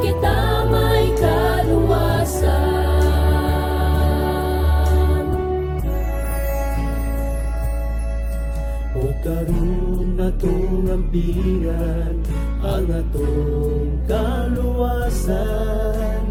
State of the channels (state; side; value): identical; both; correlation 1.00